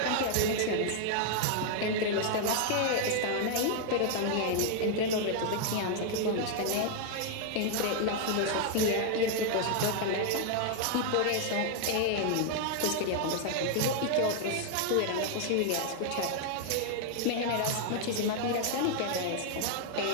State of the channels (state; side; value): different; both; correlation 0.00